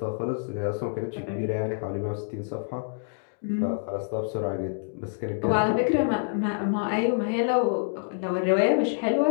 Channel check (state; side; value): silent; right; digital silence